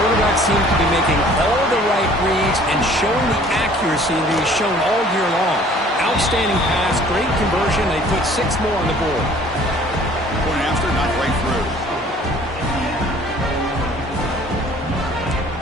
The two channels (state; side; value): normal; both; correlation 0.53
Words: seems to be making all the right reads and showing the accuracy that he's shown all year long. Outstanding pass, great conversion. They put 6 more on the board. Point after, not right through.